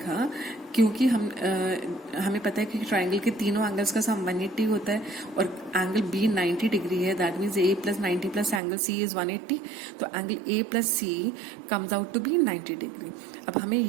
क्योंकि हमें पता है कि ट्राइंगल के तीनों एंगल्स का सम 180 होता है और एंगल B 90 डिग्री है, that means A plus 90 plus angle C is 180, तो angle A plus C comes out to be 90 degree. अब हमें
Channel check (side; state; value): left; drops out; at 8.6 s